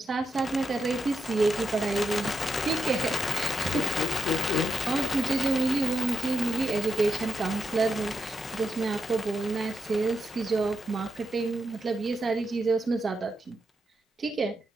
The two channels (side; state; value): both; normal; correlation 0.86